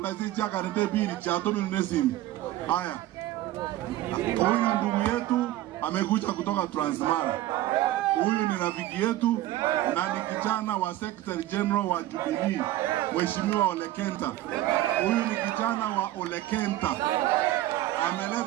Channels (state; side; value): quieter; left; 15.0 dB